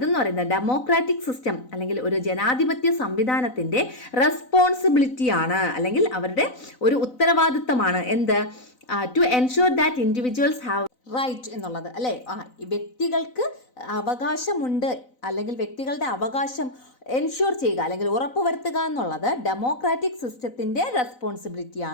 പറയുന്നത് ഡെമോക്രാറ്റിക് സിസ്റ്റം അല്ലെങ്കിൽ ഒരു ജനാധിപത്യ സംവിധാനത്തിന്റെ റെസ്പോൺസിബിലിറ്റിയാണ് അല്ലെങ്കിൽ അവരുടെ ഒരു ഉത്തരവാദിത്തമാണ്. എന്ത്? To ensure that individuals have right എന്നുള്ളത് അല്ലേ? വ്യക്തികൾക്ക് അവകാശമുണ്ട് അല്ലെങ്കിൽ വ്യക്തികളുടെ അവകാശം എൻഷുർ ചെയ്യുക അല്ലെങ്കിൽ ഉറപ്പുവരുത്തുക എന്നുള്ളത് ഡെമോക്രാറ്റിക് സിസ്റ്റത്തിന്റെ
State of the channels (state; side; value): late; right; 4.0 ms